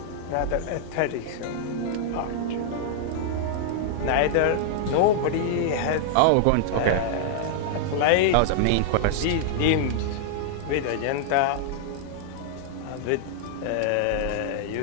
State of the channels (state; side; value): different; both; correlation -0.01